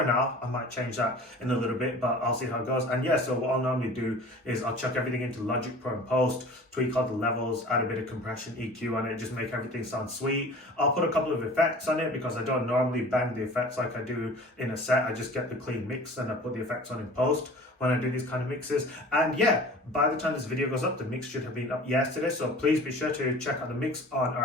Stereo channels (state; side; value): normal; both; correlation 0.42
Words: now, I might change that in a little bit, but I'll see how it goes. And yeah, so what I'll normally do is I'll chuck everything into Logic Pro and Post, tweak all the levels, add a bit of compression, EQ on it, just make everything sound sweet. I'll put a couple of effects on it because I don't normally bang the effects like I do in a set. I just get the clean mix and I put the effects on in post when I do these kind of mixes. And yeah, by the time this video goes up, the mix should have been up yesterday. So please be sure to check out the mix on